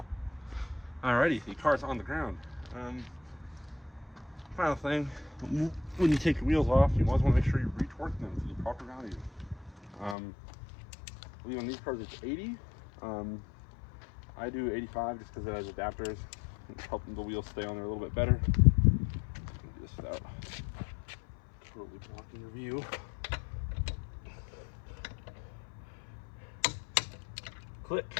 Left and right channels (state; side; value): drops out; right; at 10.2 s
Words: Alrighty, the car's on the ground. Final thing, when you take your wheels off, you always want to make sure you re-torque them to the proper value. I believe on these cars it's 80. I do 85 just because it has adapters. Helping the wheels stay on there a little bit better. Do this without totally blocking your view.